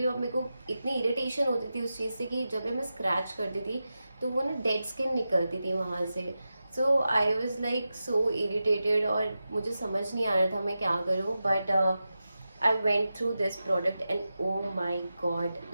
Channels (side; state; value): both; inverted; correlation -0.92